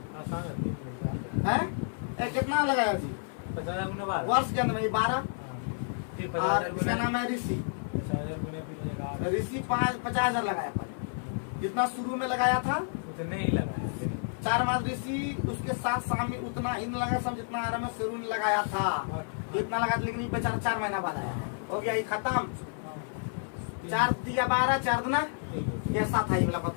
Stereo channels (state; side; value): silent; right; 58 dB below the other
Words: है कितना लगाया जी 50,000 वर्ष के अंदर 12 और इसका नाम है ऋषि 50,000 लगाया पहले जितना शुरू में लगाया था उतने ही लगाया 4 माह ऋषि उसके साथ शामिल उतना ईंधन लगाया सब जितना आराम है शेरू ने लगाया था इतना लगाया लेकिन ये बेचारा 4 महीना बाद आया हो गया ये खत्म 4 दिया 12 4 गुना कैसा था ये वाला